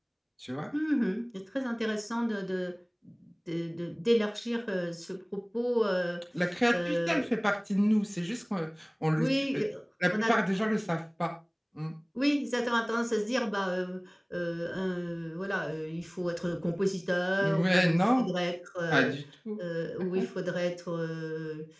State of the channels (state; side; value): identical; both; correlation 1.00